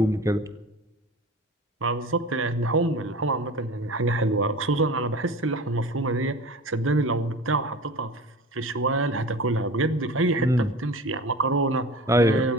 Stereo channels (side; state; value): both; normal; correlation 0.36